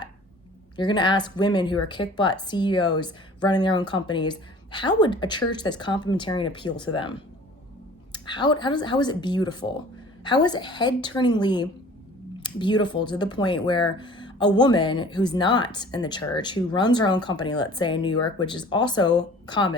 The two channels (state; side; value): normal; both; correlation 0.47